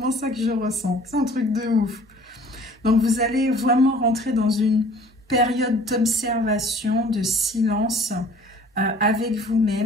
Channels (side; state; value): both; normal; correlation 0.51